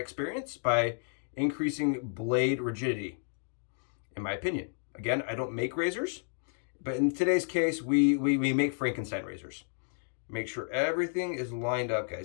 by increasing blade rigidity, in my opinion. Again, I don't make razors, but in today's case, we make Frankenstein razors. Make sure everything is lined up,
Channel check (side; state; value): right; silent; digital silence